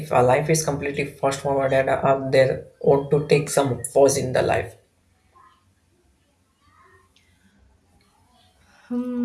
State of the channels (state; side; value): identical; both; correlation 1.00